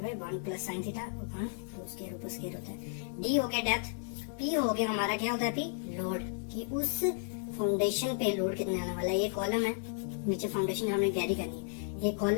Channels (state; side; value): silent; right; digital silence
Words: by 1 plus sine theta upon 2 square ऊपर स्क्वायर होता है। डी हो गया डेप्थ, P हो गया हमारा क्या होता है P लोड, कि उस फाउंडेशन पे लोड कितना आने वाला है। ये कॉलम है, नीचे फाउंडेशन हमने कैरी करनी है, ये